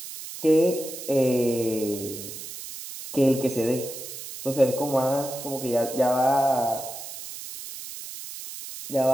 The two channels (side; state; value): right; noise; hiss, 11 dB below the sound